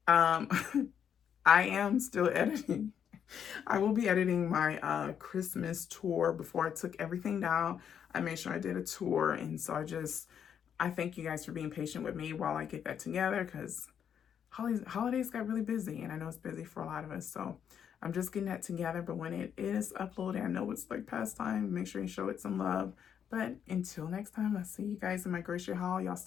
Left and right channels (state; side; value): quieter; right; 8.4 dB